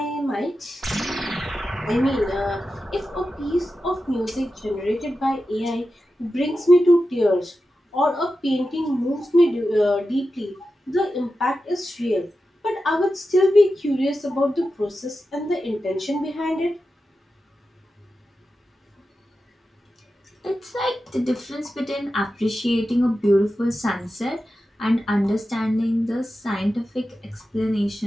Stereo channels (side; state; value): both; normal; correlation 0.92